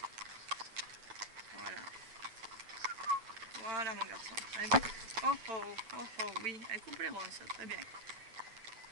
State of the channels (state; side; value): late; left; 8.9 ms